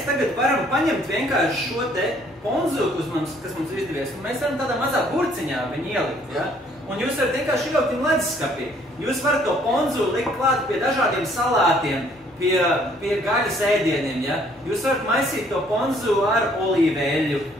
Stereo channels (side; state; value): both; normal; correlation 0.62